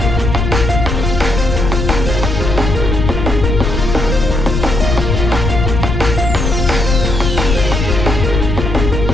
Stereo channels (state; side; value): noise; left; rumble, 2 dB below the sound